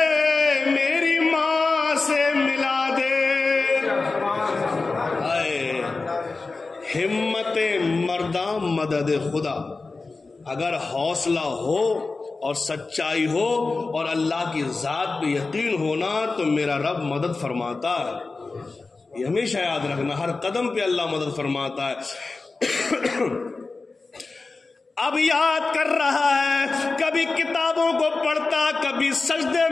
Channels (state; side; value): quieter; right; 3.8 dB